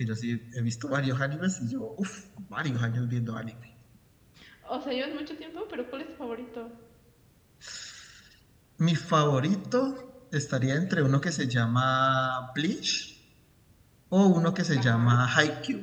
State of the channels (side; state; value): both; identical; correlation 1.00